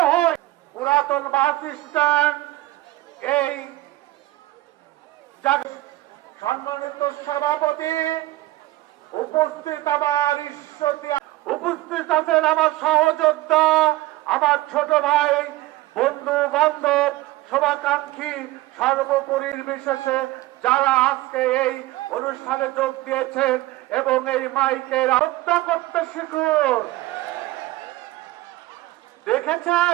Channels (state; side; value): quieter; left; 17.8 dB